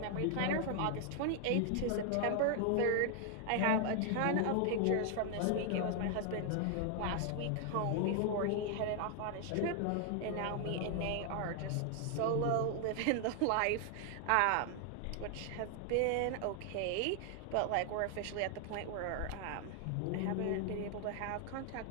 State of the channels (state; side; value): different; both; correlation 0.00